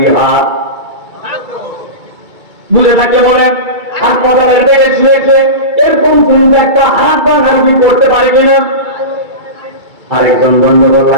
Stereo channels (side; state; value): left; late; 2.3 ms